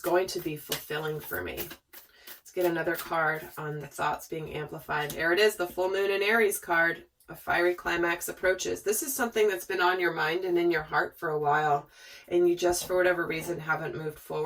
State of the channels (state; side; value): identical; both; correlation 1.00